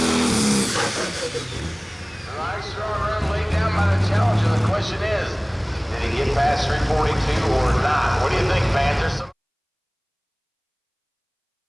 Past 342 or not? What do you think, Panther?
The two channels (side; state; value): both; identical; correlation 1.00